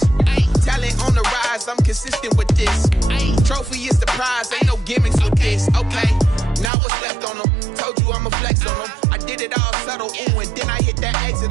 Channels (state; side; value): drops out; left; at 6.7 s